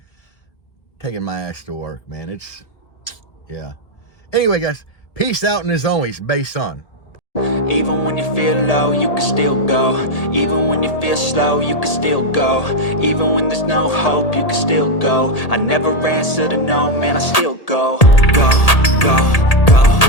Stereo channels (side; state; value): right; late; 1.8 ms